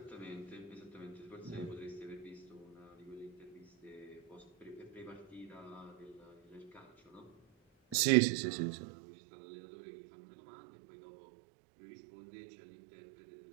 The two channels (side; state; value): left; drops out; at 8.0 s